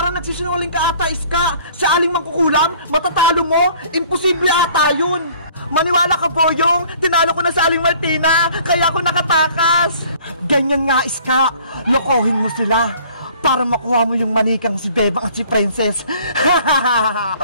nagsisinungaling ka ata, Iska. Si Aling Mangkukulam, matatalo mo? Imposible ata yun. Maniwala ka, Boyong! Tinalo ko na sa Aling Martina, kaya ako nakatakas! Ganyan nga, Iska! Lokohin mo sila para makuha mo yung manikang si Bebang at si Princess!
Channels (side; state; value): both; inverted; correlation -0.54